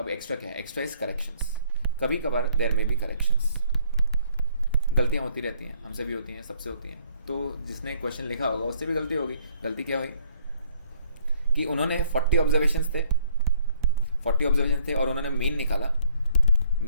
एक्स्ट्रा क्या है? Extra is corrections. कभी कभार देयर में भी करेक्शंस, गलतियाँ होती रहती हैं, हमसे भी होती हैं, सबसे होती हैं। तो जिसने क्वेश्चन लिखा होगा उससे भी गलती होगी। गलती क्या हुई कि उन्होंने 40 ऑब्जर्वेशंस थे और उन्होंने मीन निकाला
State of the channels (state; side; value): inverted; both; correlation -0.62